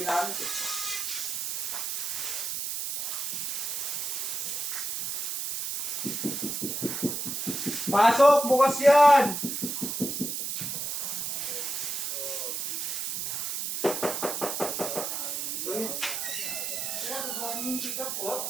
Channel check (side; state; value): right; noise; hiss, 2 dB below the sound